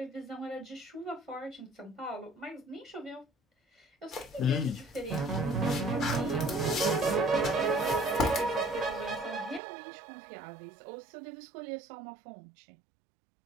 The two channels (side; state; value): left; drops out; at 9.6 s